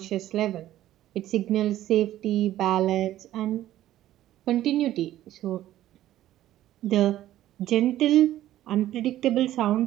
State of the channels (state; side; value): quieter; left; 13.6 dB